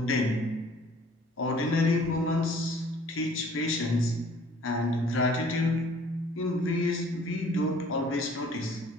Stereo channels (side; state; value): both; normal; correlation 0.54